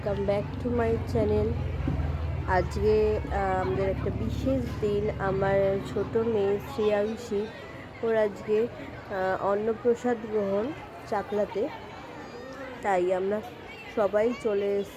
back to my channel. আজকে আমাদের একটা বিশেষ দিন। আমার ছোট মেয়ে শ্রেয়াংশী, ওর আজকে অন্নপ্রসাদ গ্রহণ চাকলাতে। তাই আমরা সবাই চলে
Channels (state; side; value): identical; both; correlation 1.00